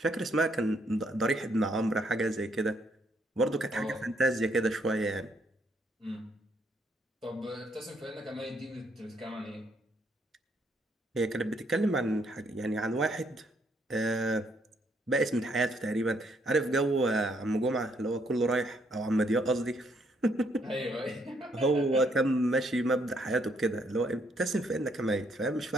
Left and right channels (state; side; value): normal; both; correlation 0.71